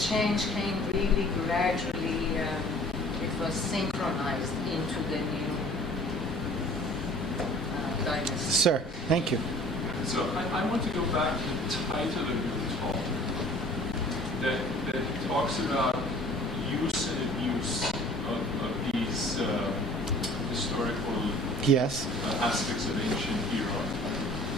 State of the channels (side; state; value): both; normal; correlation 0.50